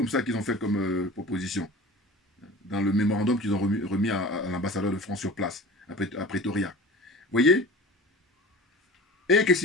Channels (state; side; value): normal; both; correlation 0.38